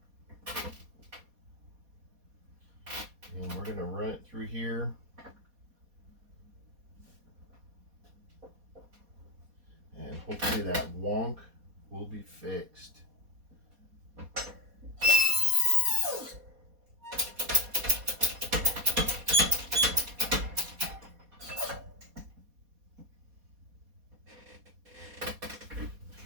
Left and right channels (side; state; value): left; late; 4.2 ms